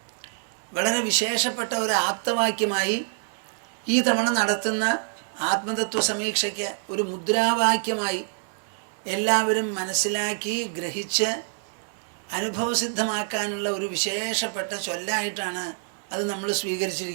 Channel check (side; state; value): left; silent; digital silence